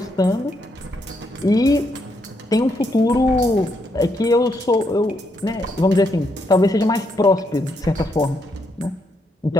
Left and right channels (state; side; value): normal; both; correlation 0.77